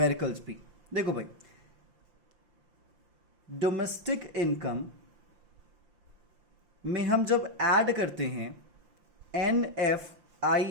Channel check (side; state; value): left; late; 5.7 ms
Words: भी। देखो भाई, डोमेस्टिक इनकम में हम जब ऐड करते हैं